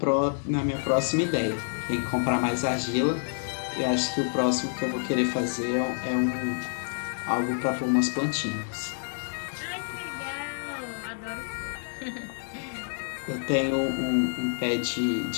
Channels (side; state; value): right; silent; digital silence